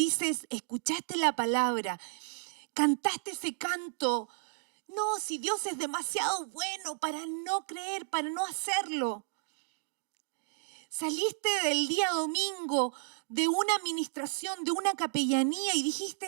escuchaste la palabra, cantaste ese canto? No, si Dios es demasiado bueno para no creer, para no hacerlo. Saliste del día domingo de una administración, de una capellanía y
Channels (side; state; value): left; silent; digital silence